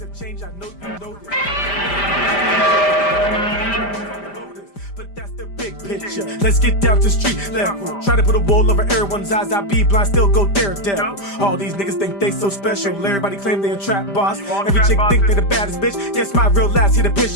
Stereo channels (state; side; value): late; right; 5.0 ms